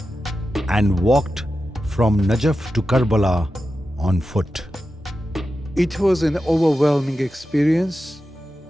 and walked from Najaf to Karbala on foot. It was an overwhelming experience.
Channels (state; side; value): normal; both; correlation 0.91